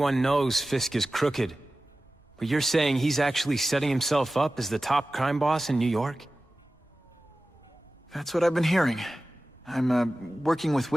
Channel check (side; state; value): both; normal; correlation 0.96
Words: knows Fisk is crooked. But you're saying he's actually setting himself up as the top crime boss in New York? That's what I've been hearing. I'm working with